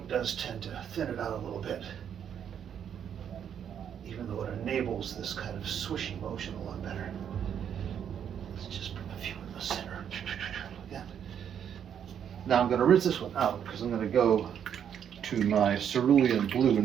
does tend to thin it out a little bit, even though it enables this kind of swishy motion a lot better. Let's just put a few in the center. Like that. Now I'm going to rinse this one out because I'm going to go to my Cerulean Blue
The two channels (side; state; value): left; quieter; 8.7 dB